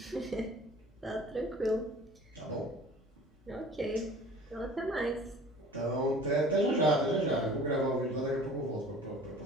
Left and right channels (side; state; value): both; normal; correlation 0.47